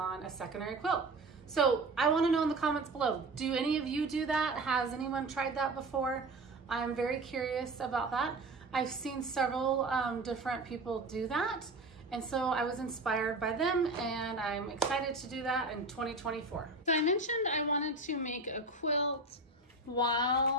a secondary quilt. So I want to know in the comments below, do any of you do that? Has anyone tried that before? I'm very curious about that. I've seen several different people do that. And so I was inspired by them and I'm excited to do that in 2024. So I mentioned I wanted to make a quilt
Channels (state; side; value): quieter; left; 3.0 dB